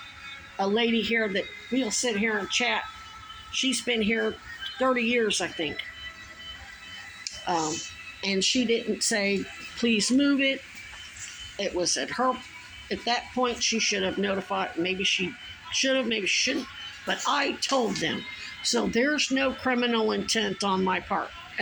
a lady here that we'll sit here and chat. She's been here 30 years, I think. And she didn't say, please move it. It was at that point, she should have notified. Maybe she should have, maybe she shouldn't. But I told them. So there's no criminal intent on my part.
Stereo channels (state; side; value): identical; both; correlation 1.00